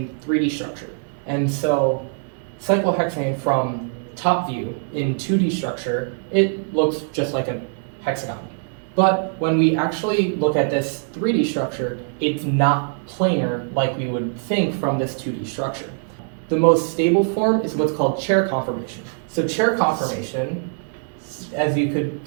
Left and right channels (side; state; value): left; silent; 58 dB below the other